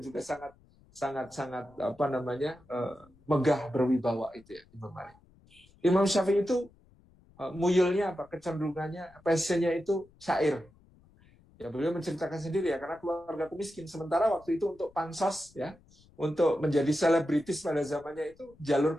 juga sangat megah berwibawa itu ya Imam Malik. Imam Syafi'i itu muyulnya apa? Kecenderungannya, passionnya itu syair. Ya beliau menceritakan sendiri ya, karena keluarga miskin. Sementara waktu itu untuk pansos ya, untuk menjadi selebritis pada zamannya itu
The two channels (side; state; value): left; noise; rumble, 29 dB below the sound